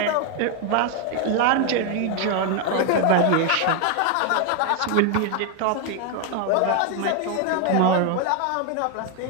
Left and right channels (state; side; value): different; both; correlation 0.01